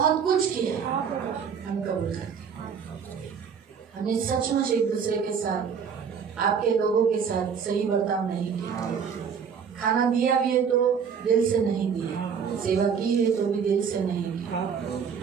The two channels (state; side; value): quieter; left; 6.8 dB